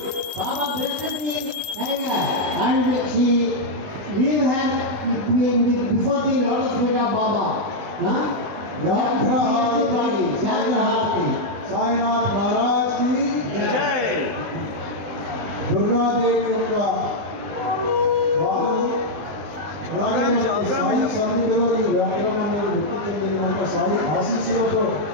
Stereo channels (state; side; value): late; left; 20 ms